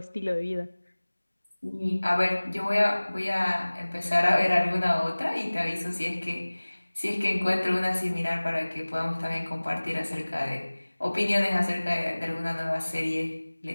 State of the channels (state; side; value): inverted; both; correlation -1.00